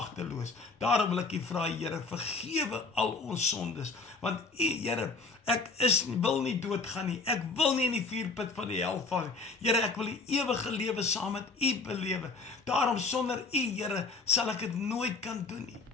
Daarom wil ek U vra, Here, vergewe al ons sondes, want U, Here, ek wil nie doodgaan nie, ek wil nie in die vuurput van die hel val nie. Here, ek wil die ewige lewe saam met U belewe. Daarom sonder U, Here, sal ek dit nooit kan doen nie.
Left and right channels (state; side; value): quieter; right; 4.0 dB